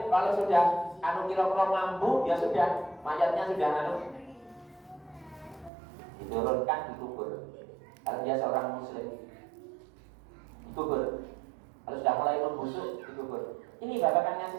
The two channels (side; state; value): left; drops out; at 5.7 s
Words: kalau sudah kira-kira mampu, ya sudah, mayatnya sudah diturunkan, dikubur. Kalau dia seorang muslim, dikubur. Kalau sudah mulai membusuk dikubur. Ini babakan